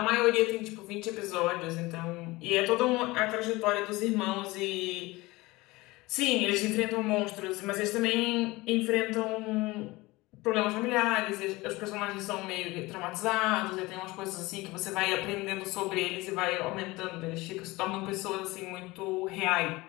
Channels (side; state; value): right; quieter; 21.3 dB